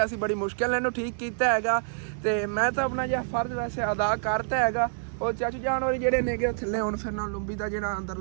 ਸੀ, ਬੜੀ ਮੁਸ਼ਕਿਲ ਇਹਨੂੰ ਠੀਕ ਕੀਤਾ ਹੈਗਾ। ਤੇ ਮੈਂ ਤਾਂ ਆਪਣਾ ਜਿਹਾ ਫਰਜ਼ ਵੈਸੇ ਅਦਾ ਕਰਤਾ ਹੈਗਾ। ਉਹ ਚਾਚੂ ਜਾਨ ਹੋਰੀ ਜਿਹੜੇ ਨੇਗੇ ਥੱਲੇ ਹੁਣ ਫਿਰ ਨਾਲ ਲੰਬੀ ਦਾ ਜਿਹੜਾ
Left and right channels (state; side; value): silent; left; digital silence